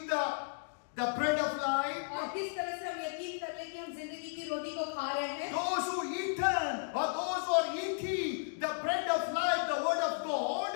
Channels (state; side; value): silent; right; digital silence